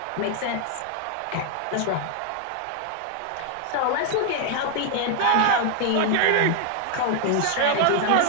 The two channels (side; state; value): both; different; correlation 0.00